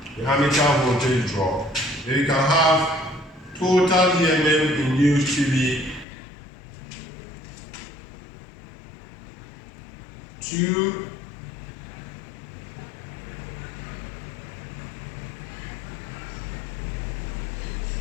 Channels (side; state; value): right; drops out; at 6.1 s